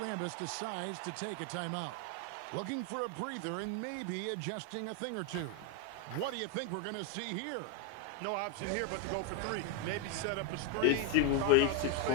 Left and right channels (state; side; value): different; both; correlation 0.01